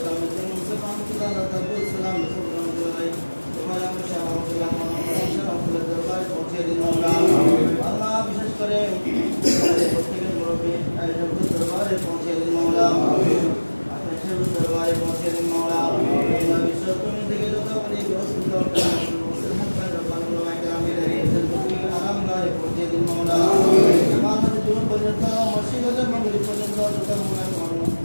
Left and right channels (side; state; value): both; inverted; correlation -1.00